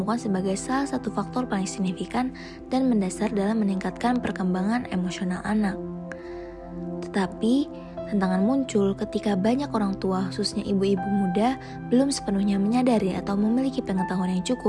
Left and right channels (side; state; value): both; identical; correlation 1.00